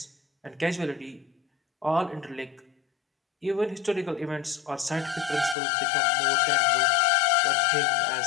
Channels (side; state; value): right; drops out; at 5.6 s